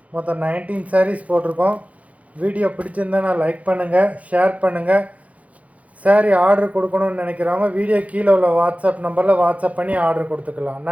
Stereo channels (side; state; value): left; late; 0.067 ms